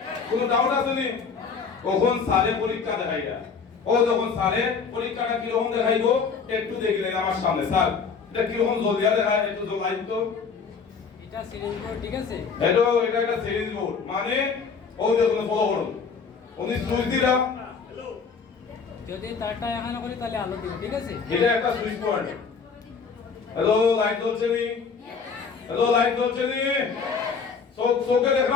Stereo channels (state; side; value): quieter; right; 5.5 dB